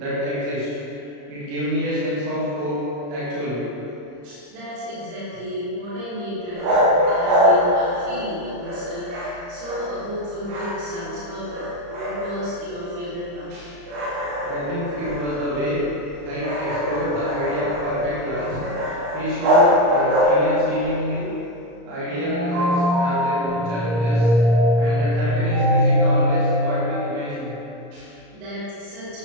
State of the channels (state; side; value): late; left; 34 ms